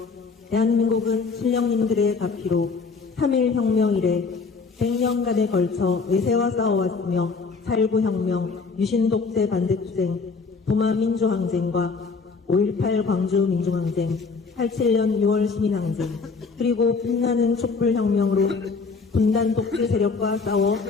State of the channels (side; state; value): right; quieter; 4.6 dB